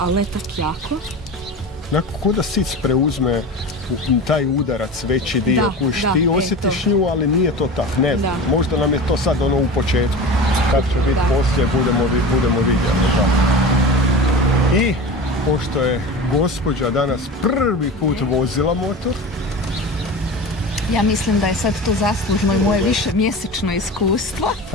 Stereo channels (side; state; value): both; normal; correlation 0.31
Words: ne tak jako. Ko da sic preuzme taj udarac, veći dio, ti osjetiš nju, ali nije to tak, ne znam, možda nam je to sad ono u početku, kad će biti poslije, budemo vidjeli, da. I, pošto je gospođa danas prvi put vozila motor, ja mislim da je sad to zaslužno i moje više mjesečno iskustvo.